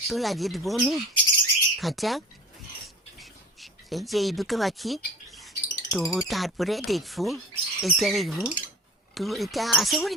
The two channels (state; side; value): normal; both; correlation 0.38